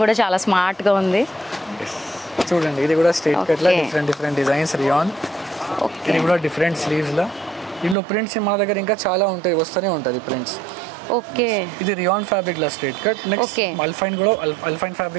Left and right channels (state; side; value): drops out; left; at 8.0 s